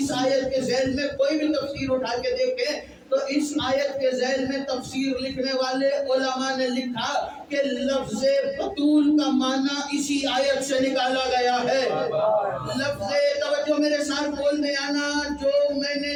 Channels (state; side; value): identical; both; correlation 1.00